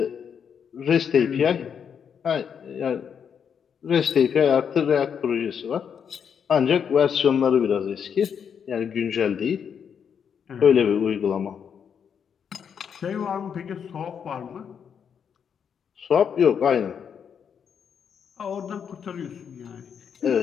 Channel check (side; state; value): right; quieter; 7.4 dB